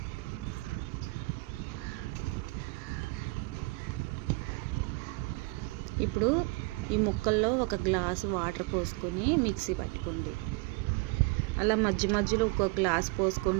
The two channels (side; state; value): left; quieter; 24.9 dB